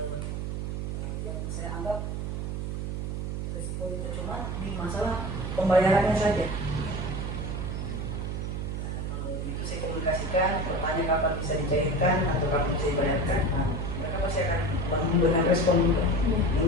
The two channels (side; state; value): right; noise; hum, 3 dB below the sound